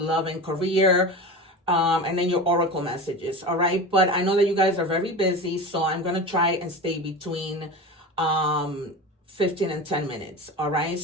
and career, and then your oracle messages. All right. But I know that you guys are very busy, so I'm going to try and stay between 15 and 10 minutes. All right.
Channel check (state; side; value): normal; both; correlation 0.29